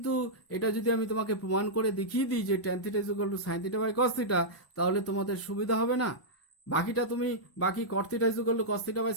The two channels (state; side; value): late; right; 1.0 ms